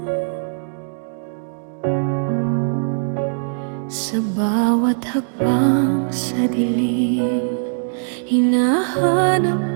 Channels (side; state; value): left; silent; digital silence